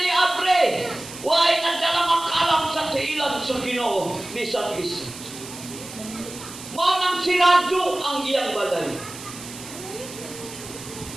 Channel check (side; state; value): right; noise; hiss, 13 dB below the sound